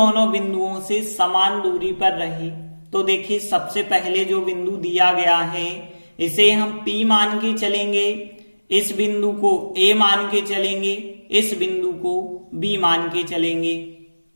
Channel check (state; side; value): inverted; both; correlation -1.00